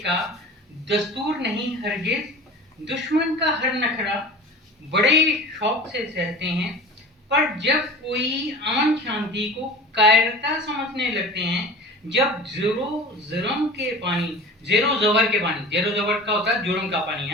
दस्तूर नहीं हरगिज, दुश्मन का हर नखरा बड़े शौक से सहते हैं। पर जब कोई अमन शांति को कायरता समझने लगते हैं, जब जेरो जबर के पानी, जेरो जबर का होता है जुर्म का पानी, है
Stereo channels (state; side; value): normal; both; correlation 0.38